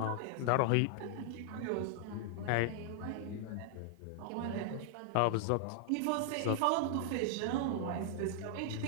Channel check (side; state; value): both; different; correlation -0.01